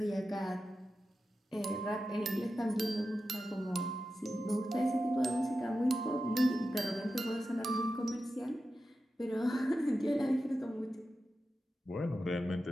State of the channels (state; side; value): normal; both; correlation 0.92